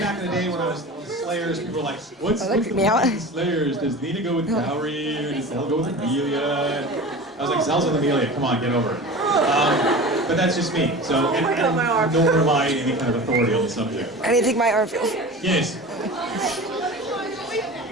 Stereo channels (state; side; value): normal; both; correlation 0.34